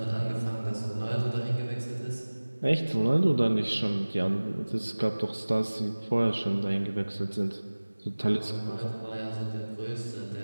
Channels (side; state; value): both; inverted; correlation -1.00